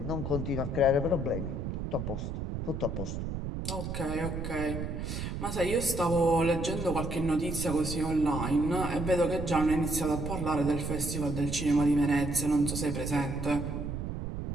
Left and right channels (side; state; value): right; noise; rumble, 4 dB below the sound